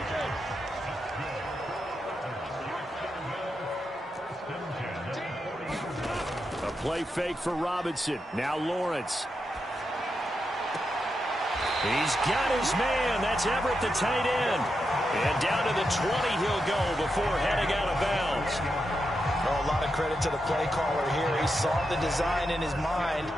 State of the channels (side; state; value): both; normal; correlation 0.86